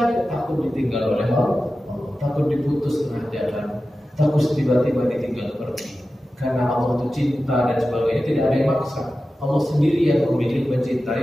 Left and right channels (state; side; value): normal; both; correlation 0.94